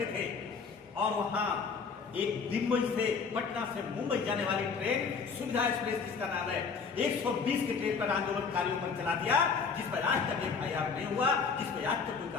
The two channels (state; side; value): quieter; right; 5.4 dB